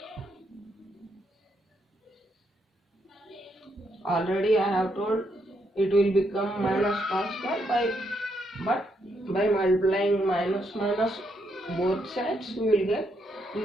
already I have told, it will become minus cos square but by multiplying minus both sides we will get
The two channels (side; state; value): both; normal; correlation 0.77